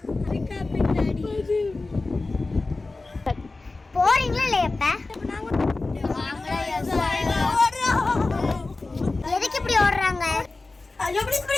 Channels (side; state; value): right; quieter; 3.4 dB